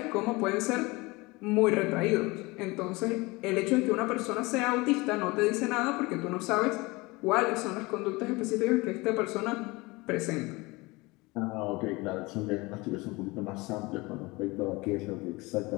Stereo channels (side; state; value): right; quieter; 23.6 dB